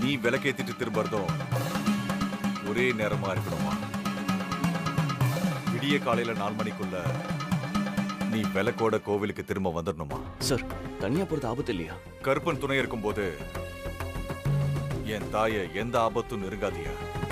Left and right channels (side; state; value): both; identical; correlation 1.00